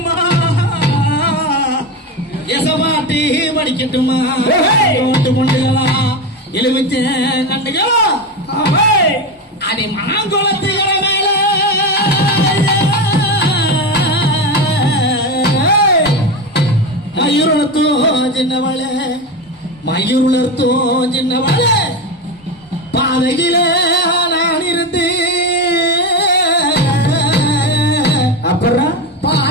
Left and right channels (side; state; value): both; normal; correlation 0.18